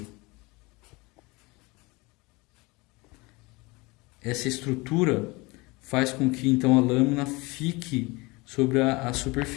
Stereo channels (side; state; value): right; quieter; 24.5 dB